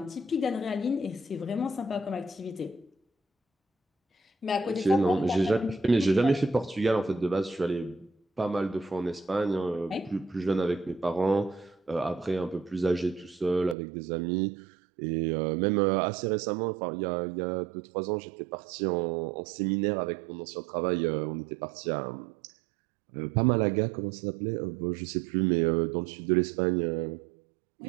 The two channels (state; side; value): drops out; left; at 13.8 s